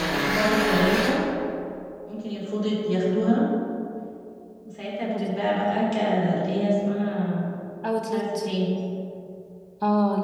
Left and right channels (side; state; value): both; identical; correlation 1.00